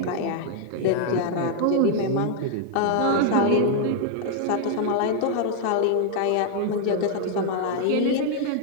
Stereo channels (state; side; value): different; both; correlation 0.00